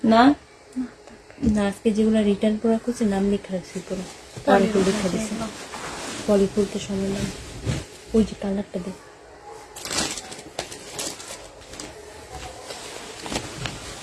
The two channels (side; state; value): both; identical; correlation 1.00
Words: না? না, আজকে যেগুলো রিটার্ন করা করছে নাম লেখা রাখছি পুরো, পলিফুল লেখা দিছে। পলিফুলতে সময় নাম, ওই যে কালারটা দেখ।